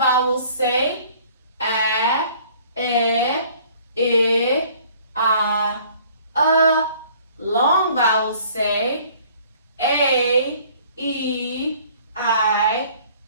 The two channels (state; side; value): inverted; both; correlation -0.55